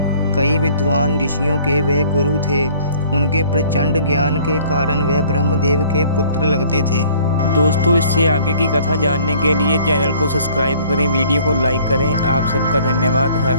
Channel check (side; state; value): both; inverted; correlation -0.55